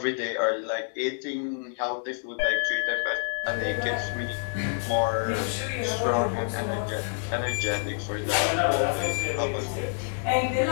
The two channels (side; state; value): right; silent; digital silence